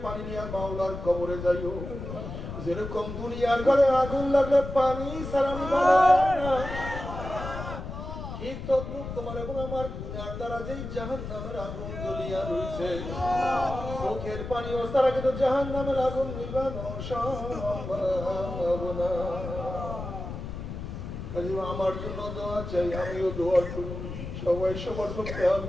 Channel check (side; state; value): left; noise; rumble, 8 dB below the sound